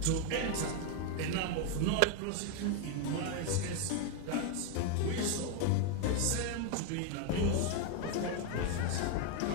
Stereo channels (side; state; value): both; different; correlation 0.01